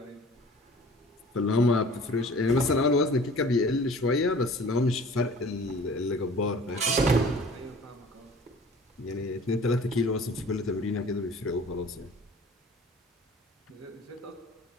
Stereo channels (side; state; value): both; normal; correlation 0.47